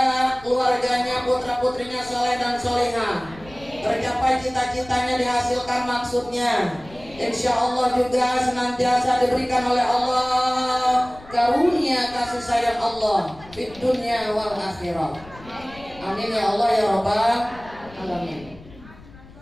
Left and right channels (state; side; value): noise; left; rumble, 21 dB below the sound